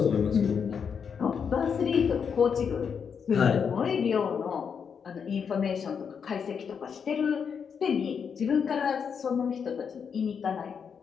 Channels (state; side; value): quieter; right; 6.7 dB